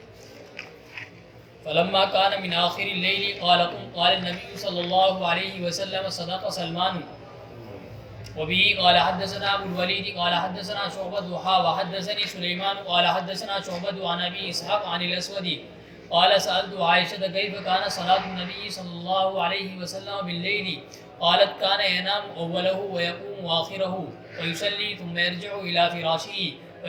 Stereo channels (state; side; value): identical; both; correlation 1.00